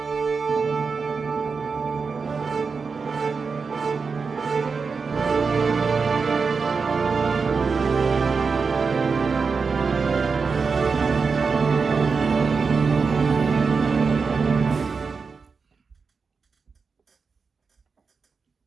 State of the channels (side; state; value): left; quieter; 5.0 dB